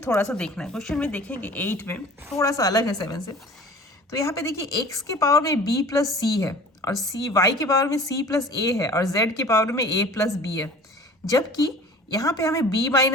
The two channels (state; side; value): normal; both; correlation 0.44